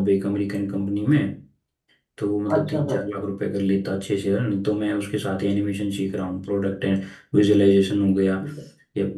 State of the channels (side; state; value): both; identical; correlation 1.00